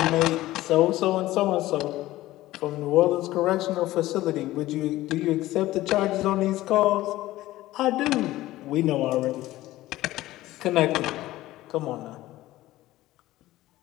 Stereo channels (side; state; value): right; quieter; 16.4 dB